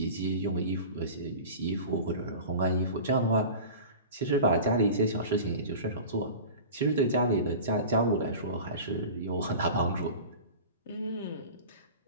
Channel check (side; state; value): both; inverted; correlation -0.36